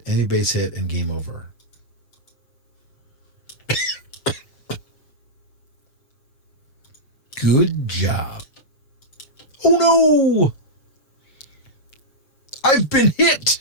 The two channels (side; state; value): right; late; 7.2 ms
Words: enemy base hit, and game over. Good job. Oh no! I've been